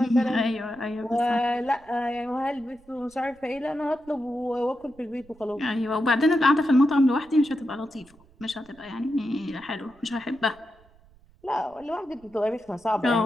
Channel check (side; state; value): right; noise; rumble, 28 dB below the sound